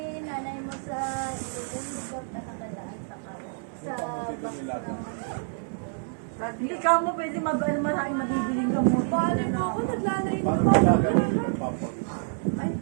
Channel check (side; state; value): left; silent; digital silence